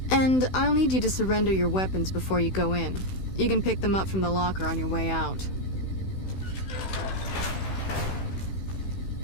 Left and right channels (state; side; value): late; right; 16 ms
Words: And I'll need you to surrender your weapons before you go in. You can pick them up from the locker on your way out.